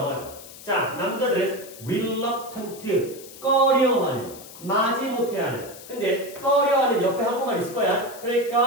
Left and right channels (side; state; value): left; noise; hiss, 17 dB below the sound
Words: 자, 남자들은 reluctant 꺼려하는 마지못해하는 근데 꺼려하는 옆에 한국말 있을 거야.